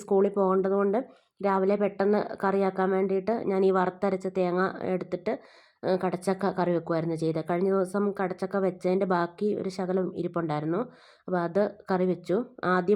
സ്കൂളിൽ പോകേണ്ടതുകൊണ്ട് രാവിലെ പെട്ടെന്ന് കറിയാക്കാൻ വേണ്ടിയിട്ട് ഞാൻ ഈ വറുത്തരച്ച തേങ്ങ എടുത്തിട്ട് കടച്ചക്ക കറി വെക്കുമായിരുന്നു ചെയ്തത്. കഴിഞ്ഞ ദിവസം കടച്ചക്ക വെച്ചതിൻ്റെ ബാക്കി ഒരു ശകലം ഇരിപ്പുണ്ടായിരുന്നു. അപ്പോൾ അത് കറി വെച്ചു.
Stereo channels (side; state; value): both; identical; correlation 1.00